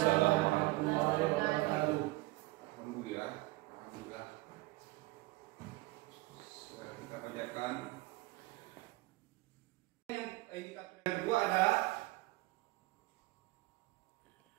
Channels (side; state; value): left; quieter; 20.6 dB